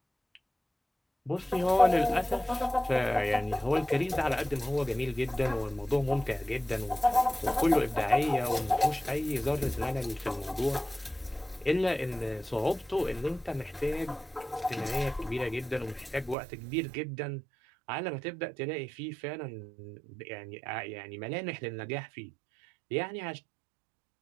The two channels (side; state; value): left; drops out; at 16.4 s